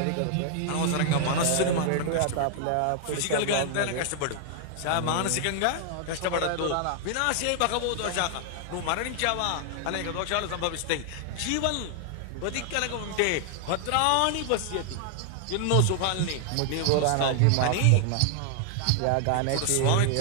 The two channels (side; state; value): both; different; correlation 0.00